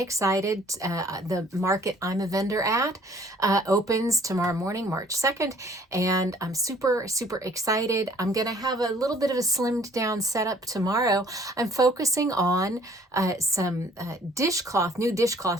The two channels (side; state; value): both; normal; correlation 0.57